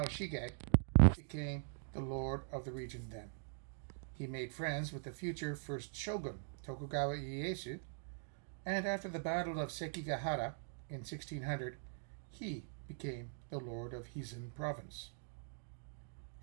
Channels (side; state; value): left; silent; digital silence